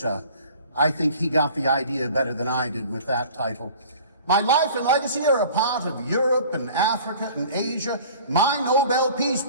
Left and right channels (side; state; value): both; inverted; correlation -0.46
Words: I think he got the idea better than I did with that title. My life and legacy are a part of Europe and Africa and Asia. My Nobel Peace